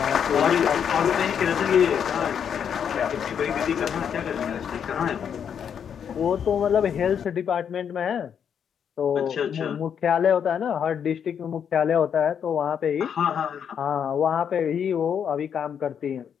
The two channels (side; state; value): right; quieter; 7.9 dB